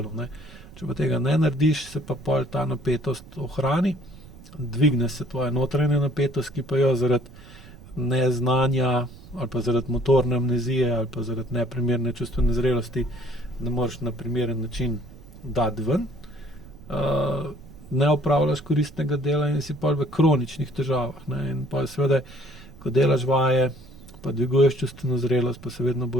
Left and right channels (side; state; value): right; noise; rumble, 19 dB below the sound